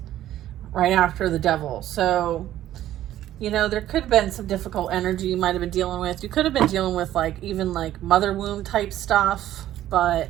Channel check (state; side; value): quieter; left; 12.9 dB